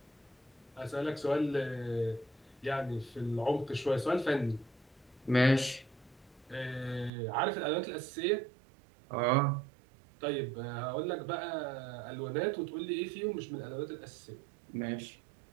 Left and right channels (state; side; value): drops out; left; at 7.1 s